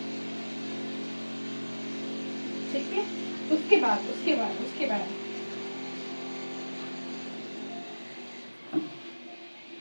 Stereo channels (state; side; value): inverted; both; correlation -1.00